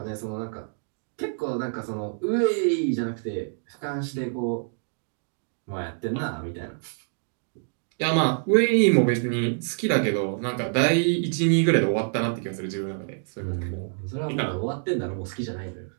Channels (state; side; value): silent; left; digital silence